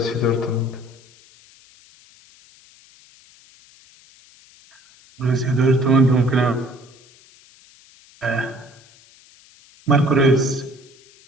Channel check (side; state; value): left; noise; hiss, 27 dB below the sound